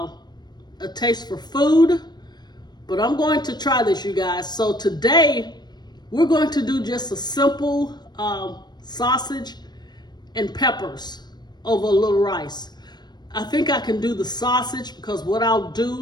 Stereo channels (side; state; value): right; late; 0.20 ms